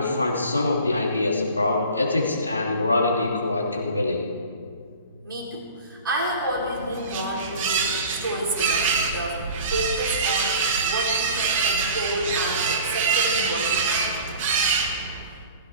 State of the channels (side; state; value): both; inverted; correlation -0.43